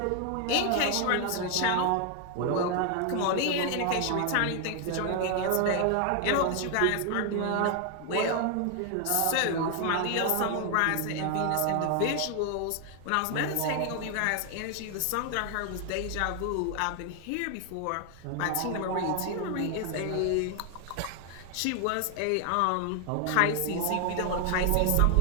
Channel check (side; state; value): both; different; correlation 0.00